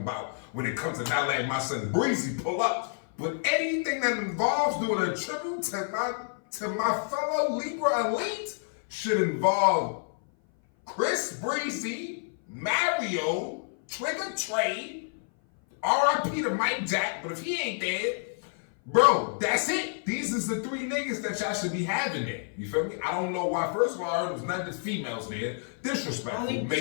when it comes to not letting my son Breezy pull up. But anything that involves doing a tribute to my fellow Libra elite should involve Chris Breezy, Mario, Trigger Trey, R.I.P. to Mike Jack, but if he ain't dead, bro, that's it. These is the three niggas that y'all should be having there. You feel me? I don't know why. First of all, I heard it was not just females there. Disrespectful. Only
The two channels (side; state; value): right; silent; 57 dB below the other